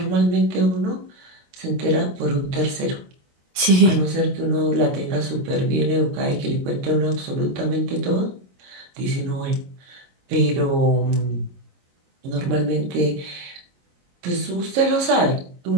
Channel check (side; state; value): left; late; 22 ms